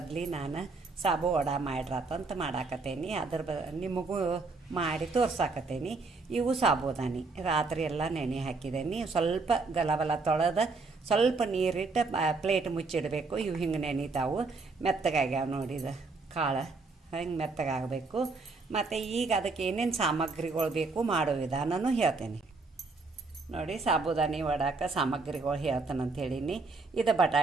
ನಾನು ಸಾಬು ವಡ ಮಾಡ್ರಾತಂತ ಮಾಡಾಕತ್ತೇನಿ. ನಿಮಗೂ ಮಾಡಿ ತೋರ್ಸಾಕತ್ತೇನಿ. ಇವು ಸಾಬುದಾನಿ ರಾತ್ರಿ ಎಲ್ಲ ನೆನೆ ಹಾಕಿದ್ದೇನೆ. ಸ್ವಲ್ಪ ಗಲಬಲ ತೊಳೆದು ಸ್ವಲ್ಪ ನೀರಿಟ್ಟು ಪ್ಲೇಟ್ ಮುಚ್ಚಿಡಬೇಕು. ಇವು ಹಿಂಗೆ ನೆನಿತಾವು, ಮೆತ್ತಗಾಗ್ಯಾವ ನೋಡಿದ ಕಾಳು ಹಿಂಗೆ ಮೆತ್ತಗಾಗಬೇಕು. ಮತ್ತು ಈಗ ಅದಕ್ಕೆ ಏನೇನು ಸಾಮಗ್ರಿಗಳು ಬೇಕು ಮಾಡೋ ವಿಧಾನನೂ ಹೇಳ್ತೇನೆ ನೋಡಿ. ಸಾಬುದಾನಿ ವಡಾಕ ಸಾಮಗ್ರಿಗಳು ಹೇಳ್ತಾನಂತ ಹೇಳೀನಿ. ಇದು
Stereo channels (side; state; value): left; quieter; 3.9 dB